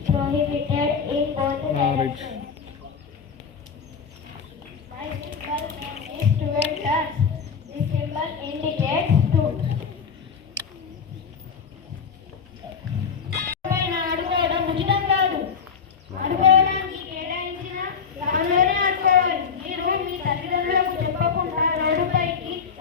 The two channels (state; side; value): quieter; right; 6.2 dB